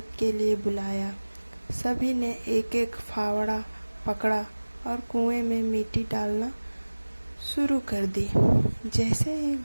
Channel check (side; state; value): both; inverted; correlation -1.00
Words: के लिए बुलाया। सभी ने एक एक फावड़ा पकड़ा और कुएं में मिट्टी डालना शुरू कर दी। जैसे ही